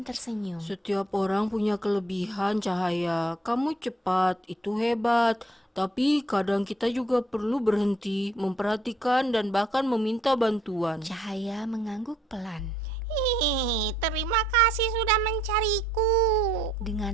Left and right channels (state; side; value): normal; both; correlation 0.66